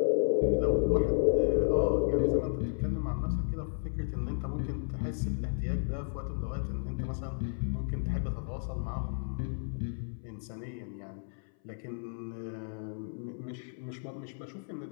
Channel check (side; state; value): right; silent; 56 dB below the other